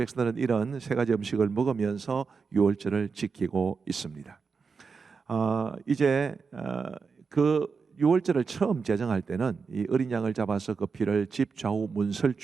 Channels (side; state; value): left; quieter; 5.3 dB